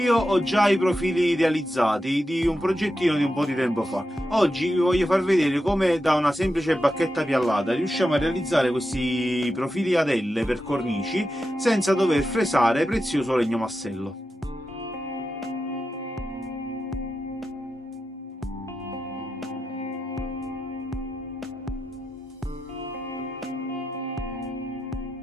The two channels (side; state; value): both; normal; correlation 0.89